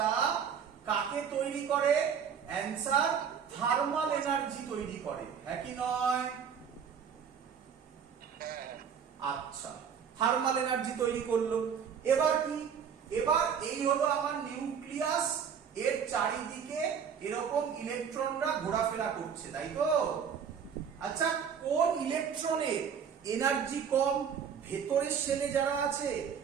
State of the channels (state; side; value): quieter; left; 7.3 dB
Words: কাকে তৈরি করে? অ্যান্সার, থার্মাল এনার্জি তৈরি করে। হ্যাঁ কি নয়? আচ্ছা, থার্মাল এনার্জি তৈরি করলো। এবার কি? এবার এই হলো আমার নিউক্লিয়াস, এর চারিদিকে এরকম ইলেকট্রনরা ঘোরাফেরা করছে, তাই তো? আচ্ছা, কোন ইলেকট্রনের এনার্জি কম? ভেতরের শেলে যারা আছে